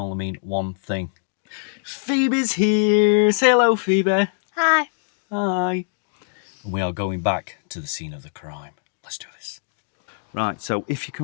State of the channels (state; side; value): silent; right; digital silence